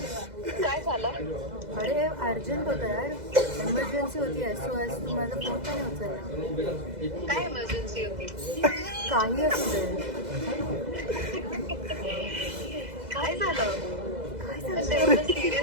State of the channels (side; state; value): left; late; 2.0 ms